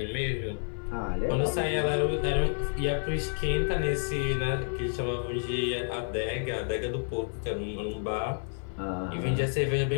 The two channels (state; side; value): silent; right; 58 dB below the other